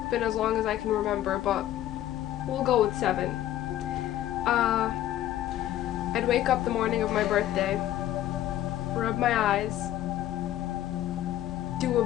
been as long as I can remember, but we'll go with 7. I'd wake up the morning of my birthday, rub my eyes, do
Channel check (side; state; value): right; quieter; 13.0 dB